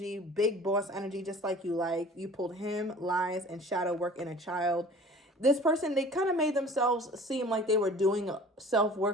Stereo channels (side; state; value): both; normal; correlation 0.45